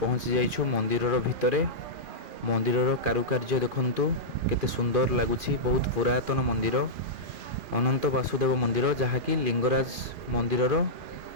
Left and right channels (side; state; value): left; late; 2.4 ms